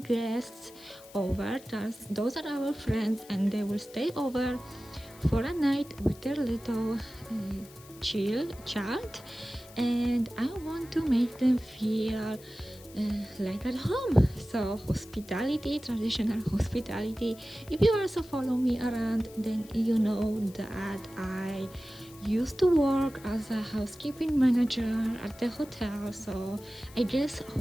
guests over. Those are our friends and they will stay over for a night with their little child, and I want to make them feel like at home. So hospitality, traditional hospitality. If you also follow me around, then you know that I used to work as a housekeeping manager at the hotel. So I guess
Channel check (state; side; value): noise; left; hiss, 21 dB below the sound